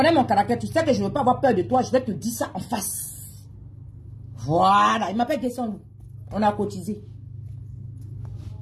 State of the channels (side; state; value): both; identical; correlation 1.00